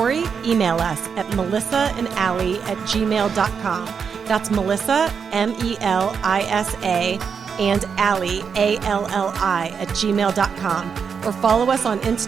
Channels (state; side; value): quieter; left; 6.4 dB